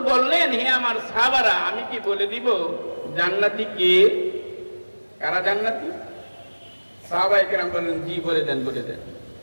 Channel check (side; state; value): both; inverted; correlation -1.00